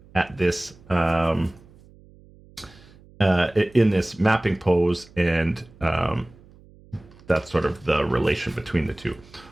at this in this mapping pose, and that's sort of the relation between the two.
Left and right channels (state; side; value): noise; right; hum, 25 dB below the sound